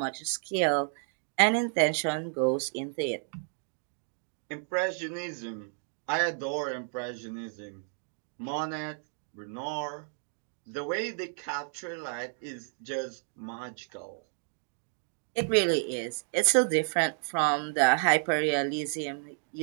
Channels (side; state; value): left; silent; 57 dB below the other